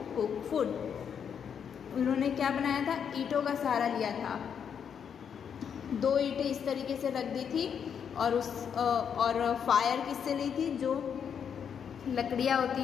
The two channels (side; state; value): right; quieter; 7.6 dB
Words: cook food, उन्होंने क्या बनाया था? ईंटों का सहारा लिया था, 2 ईंटें इस तरीके से रख दी थी और फायर किससे ली थी? जो लकड़ियाँ होती